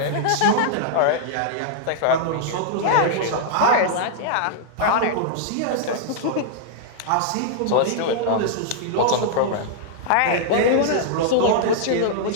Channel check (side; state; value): both; different; correlation -0.01